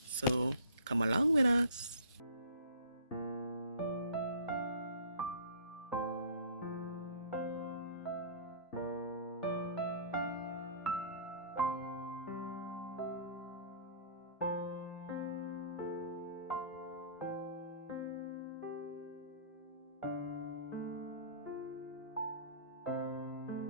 so come along with us.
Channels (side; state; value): both; inverted; correlation -0.46